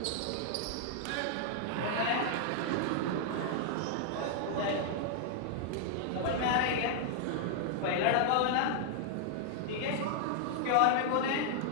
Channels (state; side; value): different; both; correlation -0.01